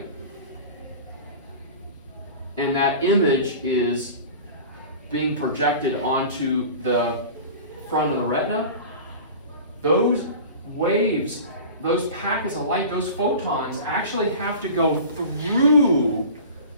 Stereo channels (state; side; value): inverted; both; correlation -0.37